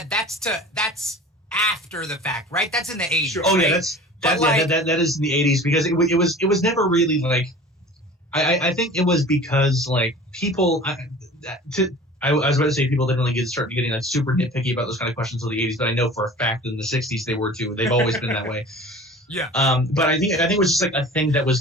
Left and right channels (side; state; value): both; normal; correlation 0.41